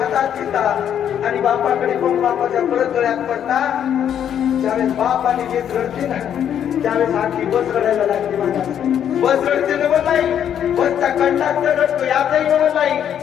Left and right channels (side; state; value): right; quieter; 9.4 dB